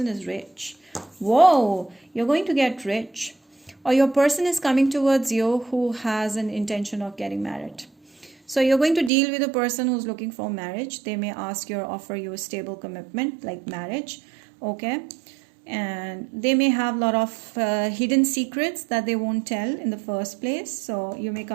is rich. Whoa, you're going to get rich. Or your person is coming towards you who has an intention of getting married. So you're going to deal with a person who's looking for marriage. They may ask you or offer you a stable commitment like marriage, okay? And they may have a lot of hidden secrets that they won't tell in the first place. So you may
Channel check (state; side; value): drops out; left; at 9.1 s